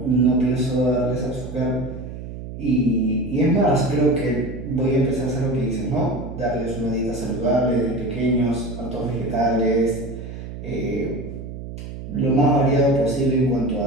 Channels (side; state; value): right; noise; hum, 10 dB below the sound